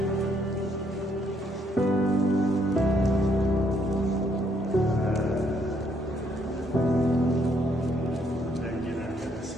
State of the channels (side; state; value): both; normal; correlation 0.70